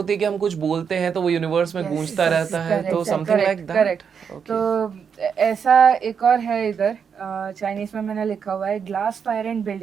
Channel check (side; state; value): left; quieter; 6.8 dB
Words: है कि हम कुछ बोलते हैं तो वो यूनिवर्स में Yes, गूंजता yes, रहता है, तो correct, something like correct, that. correct. तो ऐसा एक और है इधर, चाइनीज में मैंने लिखा हुआ है ग्लास फायर एंड